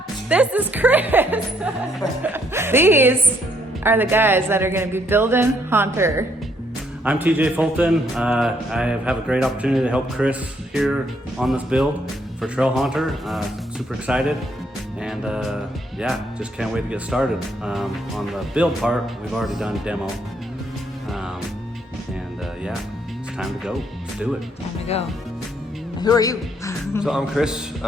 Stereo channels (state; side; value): normal; both; correlation 0.70